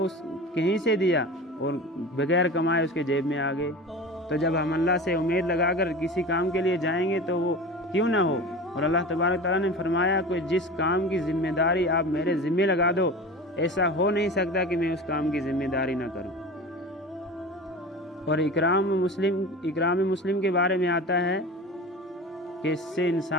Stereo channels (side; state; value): both; normal; correlation 0.33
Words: کہیں سے دیا اور بغیر کمائے اس کے جیب میں آ گئے۔ تو جب ہم اللہ سے امید لگا کر کسی کام کے لیے جائیں گے تو وہ کیوں نہ ہو، اور اللہ تبارک تعالیٰ نے فرمایا کہ جس کام کی ذمہ داری آپ میرے ذمہ لگا دو، ایسا ہو نہیں سکتا کہ میں اس کام کی ذمہ داری نہ کروں۔ اور اکرام مسلم کے بارے میں آتا ہے کہ اس سے